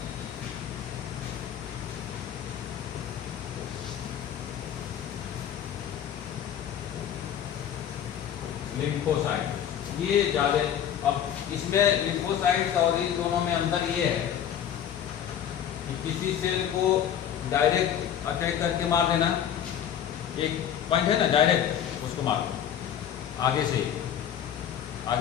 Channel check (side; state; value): right; quieter; 9.6 dB